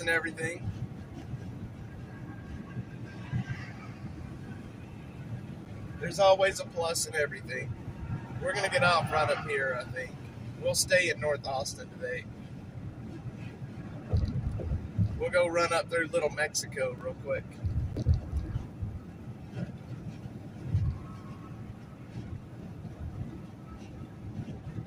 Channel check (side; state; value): both; identical; correlation 1.00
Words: everything. There's always a plus in everything. We're going to get off right up here, I think. We'll stay in North Austin today. We'll go run up through Little Mexico real quick.